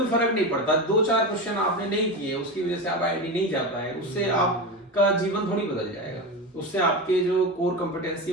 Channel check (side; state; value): both; normal; correlation 0.21